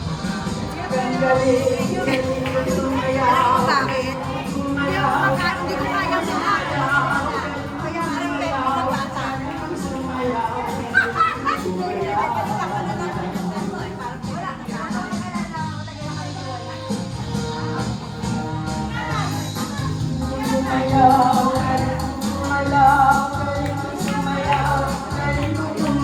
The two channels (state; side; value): identical; both; correlation 1.00